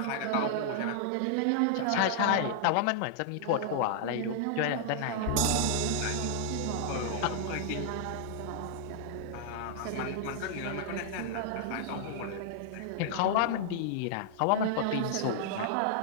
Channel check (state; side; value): different; both; correlation -0.01